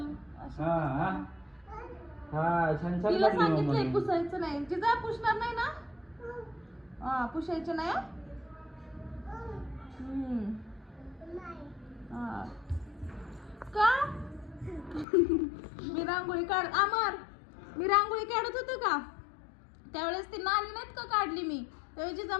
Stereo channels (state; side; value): drops out; right; at 15.1 s